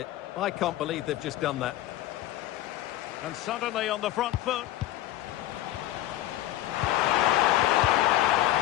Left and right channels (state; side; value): quieter; right; 14.5 dB